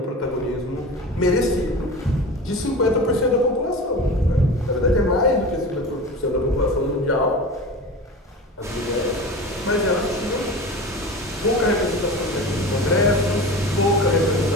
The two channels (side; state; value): both; normal; correlation 0.32